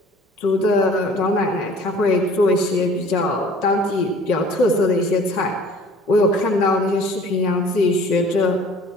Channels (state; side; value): normal; both; correlation 0.49